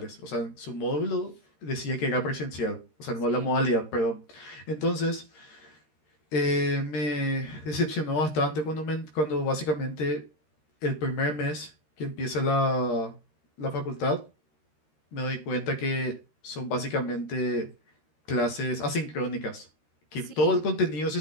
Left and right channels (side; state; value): right; late; 13 ms